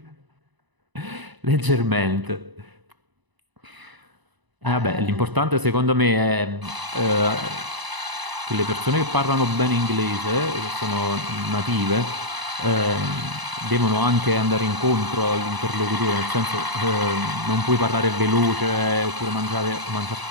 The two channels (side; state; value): left; late; 1.0 ms